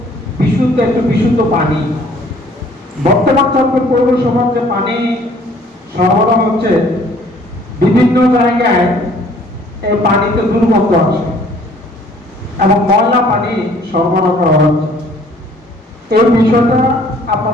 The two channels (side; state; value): both; normal; correlation 0.57